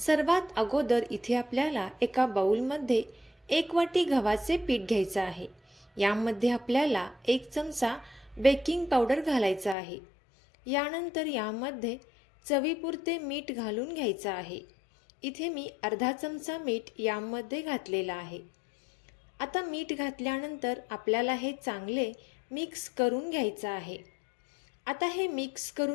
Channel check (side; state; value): right; drops out; at 9.8 s